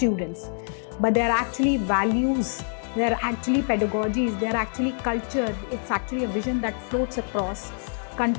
but they're actually values, they're actually pedagogies, they're actually culture. It's actually a vision that floats across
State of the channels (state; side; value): silent; right; digital silence